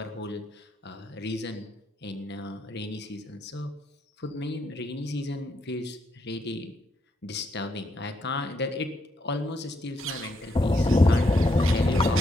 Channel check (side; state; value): both; normal; correlation 0.77